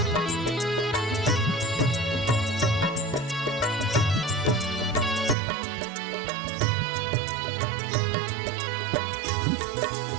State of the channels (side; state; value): left; drops out; at 5.4 s